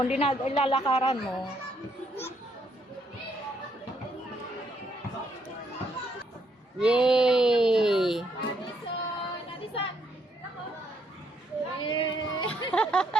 hindi na ilalakaran mo. Yay! Nadisan. Yeah.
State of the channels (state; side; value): normal; both; correlation 0.73